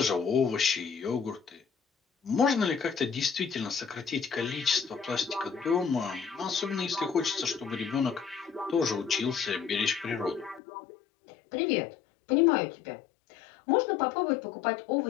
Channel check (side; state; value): right; drops out; at 10.6 s